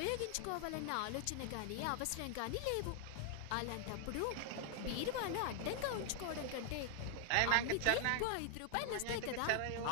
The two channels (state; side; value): different; both; correlation 0.00